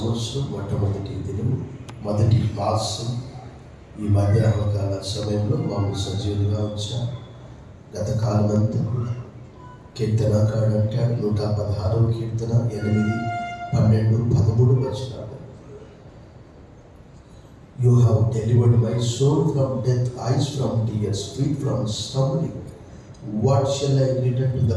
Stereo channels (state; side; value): identical; both; correlation 1.00